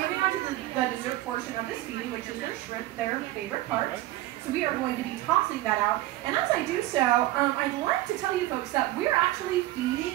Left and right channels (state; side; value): quieter; left; 16.5 dB